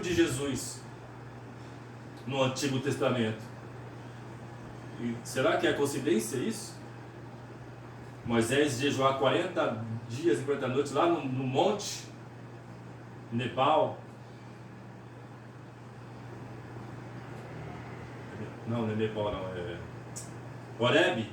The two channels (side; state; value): both; identical; correlation 1.00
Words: Jesus no Antigo Testamento. E será que é coincidência isso? Moisés jejuar 40 dias e 40 noites lá no monte, Nepal. Não é Nepal, não, é Horebe,